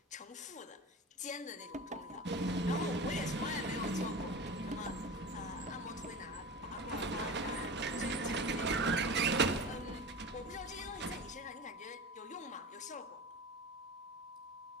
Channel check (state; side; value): normal; both; correlation 0.31